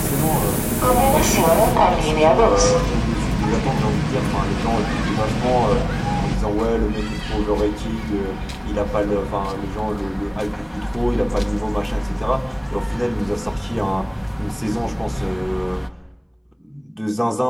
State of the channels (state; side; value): identical; both; correlation 1.00